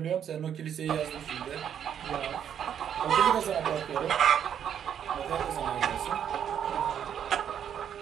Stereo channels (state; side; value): quieter; left; 9.0 dB